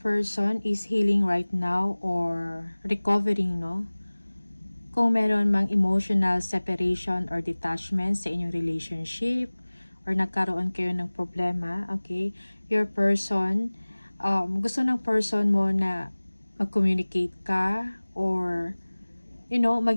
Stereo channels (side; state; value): both; inverted; correlation -1.00